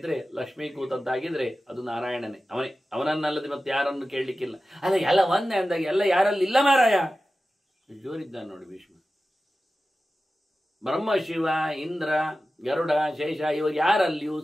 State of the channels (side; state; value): both; normal; correlation 0.94